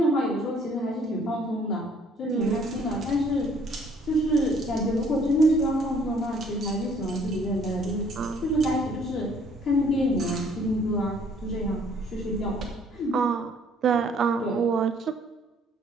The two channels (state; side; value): normal; both; correlation 0.60